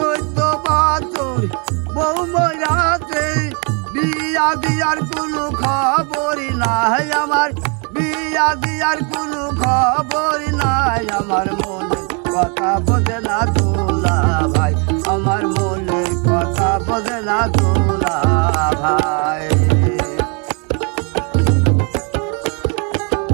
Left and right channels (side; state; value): left; quieter; 35.6 dB